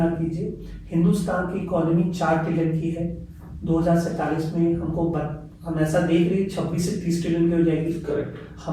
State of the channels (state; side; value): identical; both; correlation 1.00